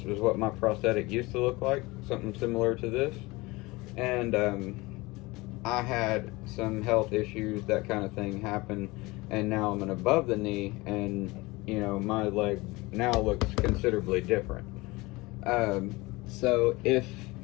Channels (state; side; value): quieter; right; 22.5 dB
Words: is what my prosthetic used to look like, something similar to this. And I had some health issues, that kind of thing happened, and now I'm an above the knee, and you know, my leg now looks considerably different. So if,